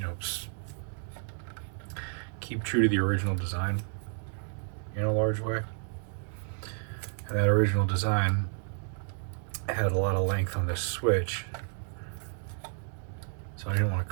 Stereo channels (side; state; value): left; silent; 57 dB below the other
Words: know, keep true to the original design in a large way. And that original design had a lot of length on this switch, so I didn't want to